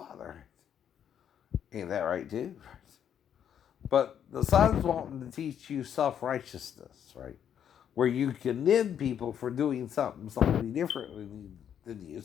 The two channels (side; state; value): right; quieter; 9.0 dB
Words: Right? Ain't that right too? Right? But the Son's wanting to teach you self-righteousness, right? Where you condemn people for doing something differently than you.